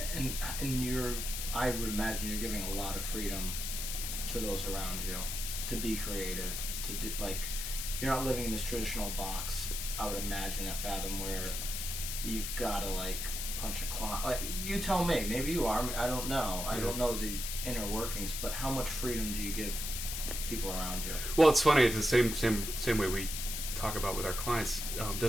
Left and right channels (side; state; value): left; noise; hiss, 4 dB below the sound